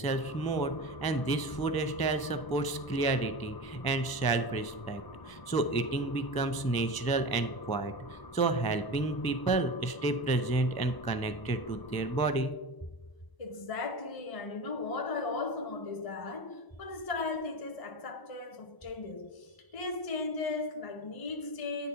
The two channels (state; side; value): late; right; 1.0 ms